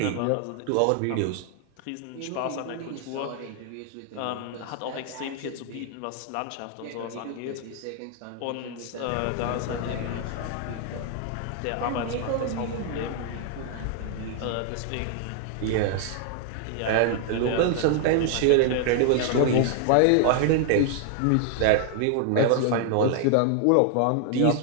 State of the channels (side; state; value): both; different; correlation 0.00